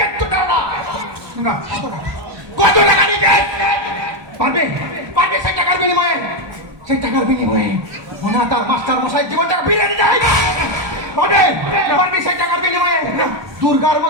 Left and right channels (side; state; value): left; late; 1.1 ms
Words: দাও না। না, কত টাকা নিয়ে পারবে পারবে সেই টাকার বিনিময়ে, সেই টাকার বিনিময়ে ওনা তার মাস্টার মশাই জীবনটা বিলিয়ে দিতে হয়। পারবে পারবে সেই টাকার বিনিময়ে দুর্গার